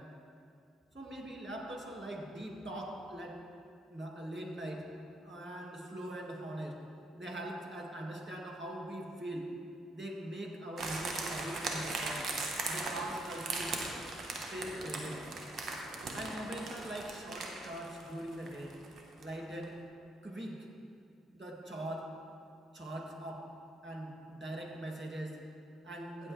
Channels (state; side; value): normal; both; correlation 0.73